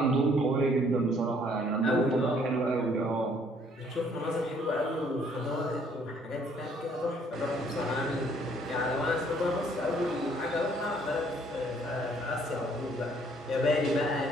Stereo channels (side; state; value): both; normal; correlation 0.62